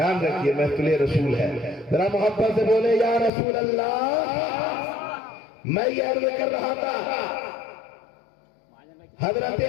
رکھیے، محفل رسول ہے، ذرا محبت سے بولے یا رسول اللہ۔ میں یہ عرض کر رہا تھا، حضرت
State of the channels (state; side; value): drops out; right; at 3.3 s